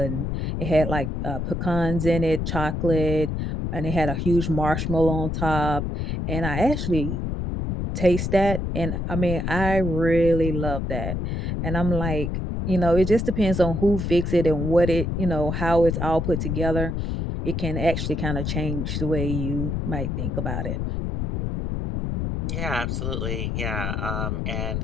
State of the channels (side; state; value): left; noise; rumble, 2 dB below the sound